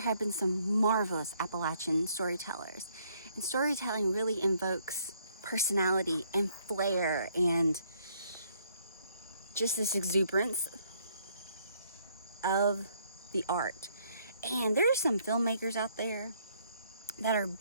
been some marvelous Appalachian storytellers. And storytelling really invokes personality and flair and just this exuberance of the art. And there are some filmmakers out there that are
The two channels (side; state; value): both; inverted; correlation -0.67